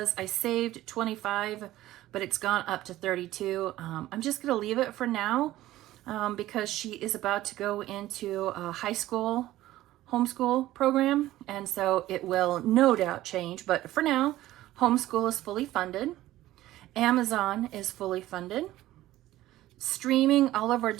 I saved 25, but it's gone up to 32. I'm just going to leave it for now because she is about to go into a high school homeschool program. And so it will no doubt change. But for now, homeschool is fully funded. Amazon is fully funded. Streaming, all of our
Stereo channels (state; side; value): quieter; left; 15.4 dB